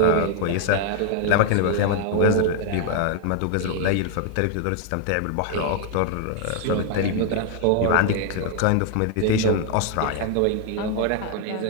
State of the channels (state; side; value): different; both; correlation 0.00